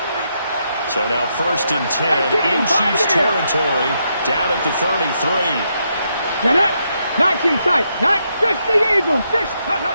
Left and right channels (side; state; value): both; inverted; correlation -0.79